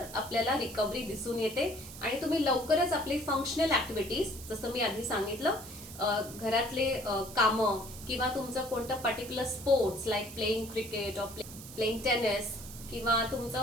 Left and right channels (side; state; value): right; noise; hiss, 14 dB below the sound